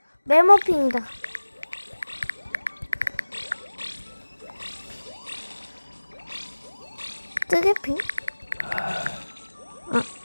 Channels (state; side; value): inverted; both; correlation -1.00